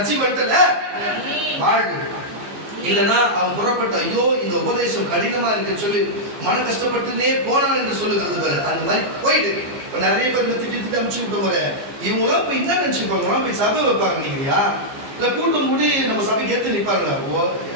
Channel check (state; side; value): late; left; 15 ms